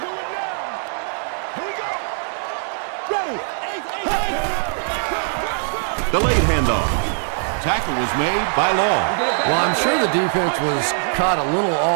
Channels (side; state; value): left; silent; digital silence